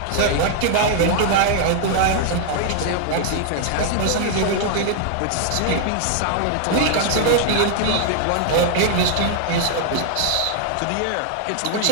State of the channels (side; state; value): both; different; correlation 0.00